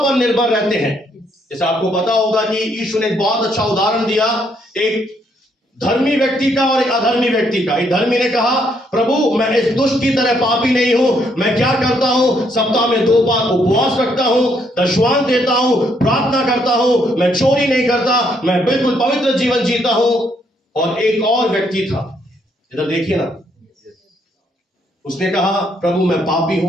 पर निर्भर रहते हैं। जैसे आपको पता होगा कि यीशु ने एक बहुत अच्छा उदाहरण दिया, एक धर्मी व्यक्ति का और एक अधर्मी व्यक्ति का। एक धर्मी ने कहा, प्रभु मैं इस दुष्ट की तरह पापी नहीं हूं, मैं क्या करता हूं, सप्ताह में 2 बार उपवास रखता हूं, दशवांश देता हूं, प्रार्थना करता हूं, मैं चोरी नहीं करता, मैं बिल्कुल पवित्र जीवन जीता हूं। और एक और व्यक्ति था, इधर देखिए ना, उसने कहा, प्रभु मैं पापी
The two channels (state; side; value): normal; both; correlation 0.72